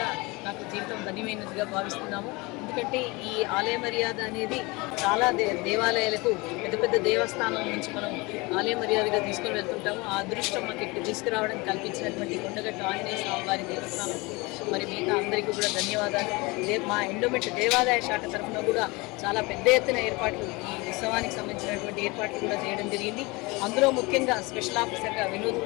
నాకు జీవితం ధన్యమైనదిగా భావిస్తున్నాము. ఎందుకంటే ఈ ఆలయ మర్యాద అనేది చాలా దేవాలయాలకు పెద్ద పెద్ద దేవస్థానం నుంచి మనం ఆలయ మర్యాదగా తీసుకొని వెళ్తుంటాము. ఆ అదృష్టం మాకు ఇక్కడ తీసుకురావడం కల్పించినటువంటి కొండగట్టు ఆంజనేయ స్వామి వారి దేవస్థానం మరి మిగతా అందరికీ కూడా ధన్యవాదాలు. మా ఎండోమెంట్ దేవాదాయ శాఖ తరఫున కూడా చాలా పెద్ద ఎత్తున ఏర్పాట్లు ఈ ఉత్సవానికి సంబంధించినటువంటి ఏర్పాట్లు కూడా చేయడం జరిగింది. అందులో ముఖ్యంగా స్పెషల్ ఆఫీసర్గా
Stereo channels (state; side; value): quieter; right; 24.8 dB